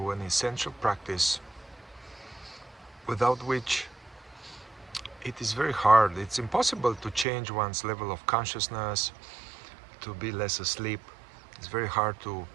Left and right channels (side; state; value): left; drops out; at 7.2 s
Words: an essential practice without which it is very hard. It's impossible to change one's level of consciousness, to be less asleep. It's very hard to